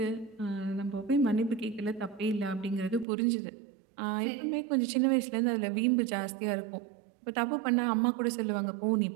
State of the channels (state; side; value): drops out; left; at 3.1 s